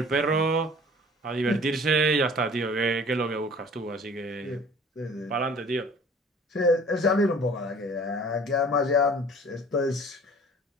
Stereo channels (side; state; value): both; normal; correlation 0.48